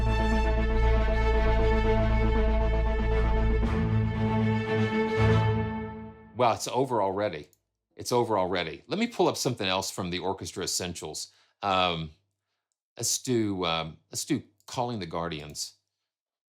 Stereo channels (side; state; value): both; identical; correlation 1.00